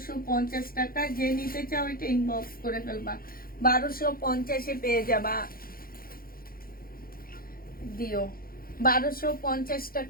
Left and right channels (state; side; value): late; right; 0.42 ms